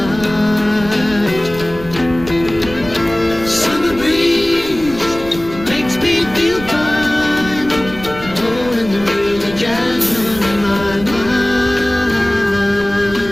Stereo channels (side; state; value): right; noise; rumble, 14 dB below the sound